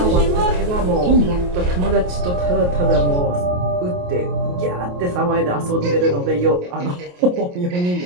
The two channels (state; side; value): late; left; 28 ms